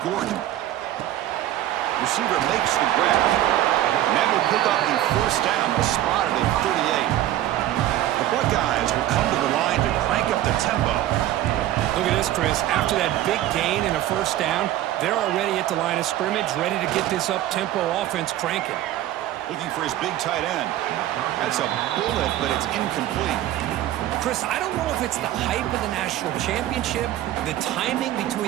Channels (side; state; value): left; quieter; 13.5 dB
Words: Receiver makes the grab. And that will pick up the first down. Spotted at 38. The Buckeyes will come to the line to crank up the tempo. Look at this, Chris. After that big gain and a first down, they're already at the line of scrimmage, ready to get this up-tempo offense cranking. Looking for his big tight end. That's a bullet, but it's incomplete. Chris, I don't know if it's the hype of the national championship, the timing